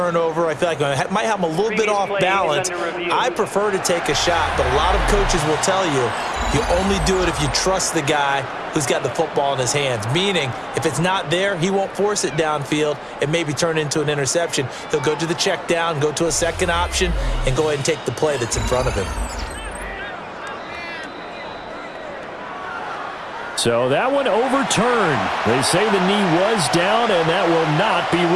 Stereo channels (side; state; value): both; identical; correlation 1.00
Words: I feel like I might have them a little bit off balance. I prefer to take a shot, but a lot of coaches will tell you, you only do it if you trust the guy who's got the football in his hands. Meaning, if it's not there, he won't force it downfield and maybe turn into an interception. He'll go to the check down, go to a second option, and go ahead and take the play that's in front of him. So that one overturned. They say the knee was down, and that will not be